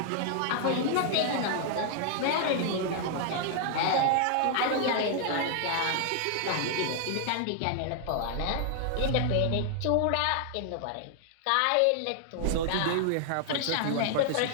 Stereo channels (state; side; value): different; both; correlation 0.00